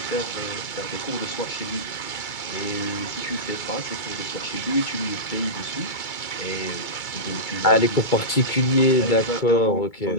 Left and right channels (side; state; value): right; late; 2.3 ms